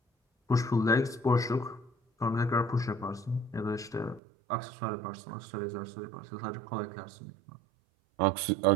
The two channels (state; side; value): drops out; left; at 4.2 s